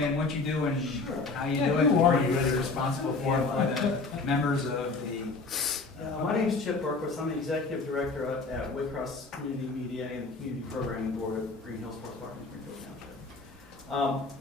what you do and how you Yeah, do it? who are you? What you're responsible for by the members of the. My name's Chip Berquist. I'm the executive director at Waycross Community Media and the Community Programming Board of Greenhills Sports Park in Greenville Township.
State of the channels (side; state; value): right; quieter; 3.8 dB